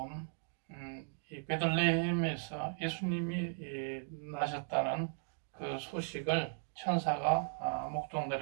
이 베들레헴에서 예수님이 나셨다는 그 소식을 천사가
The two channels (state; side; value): silent; left; digital silence